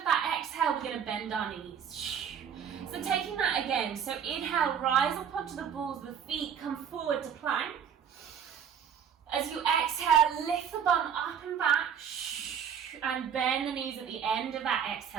that exhale, we're going to bend our knees. So taking that again. So inhale, rise up onto the balls of the feet, come forward to plank. As you exhale, lift the bum up and back. And bend the knees at the end of that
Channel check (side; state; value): left; quieter; 7.9 dB